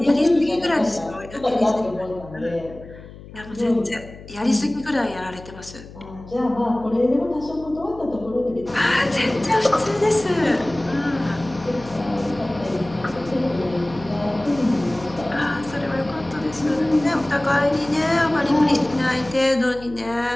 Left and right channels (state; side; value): noise; left; hum, 17 dB below the sound